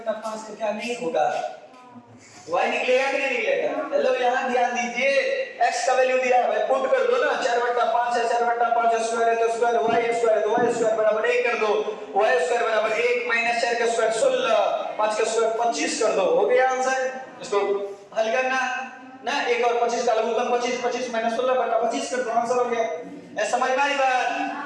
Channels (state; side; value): identical; both; correlation 1.00